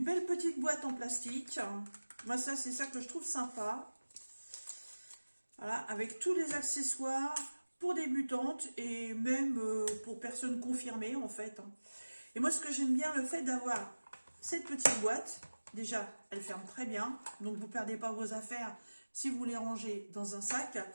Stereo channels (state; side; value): inverted; both; correlation -1.00